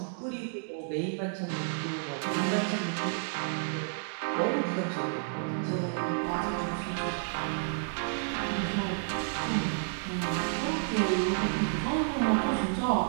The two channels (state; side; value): silent; left; digital silence